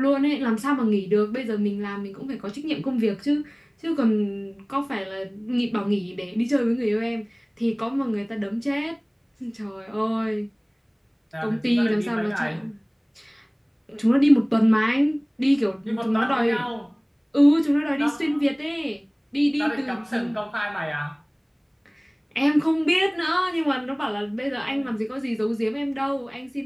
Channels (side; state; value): both; identical; correlation 1.00